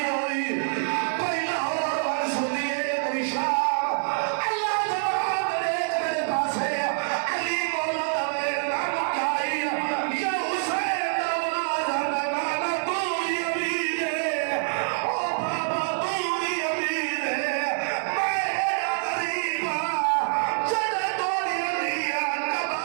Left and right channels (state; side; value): silent; left; 61 dB below the other